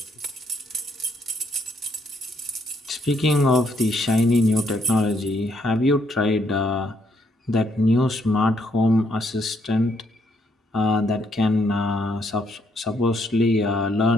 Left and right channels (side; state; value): both; normal; correlation 0.72